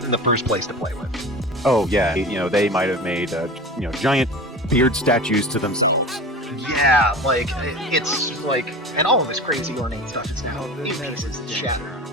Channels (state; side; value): normal; both; correlation 0.34